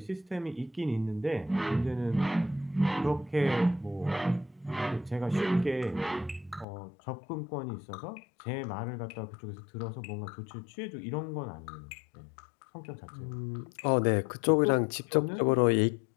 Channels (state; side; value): drops out; right; at 6.7 s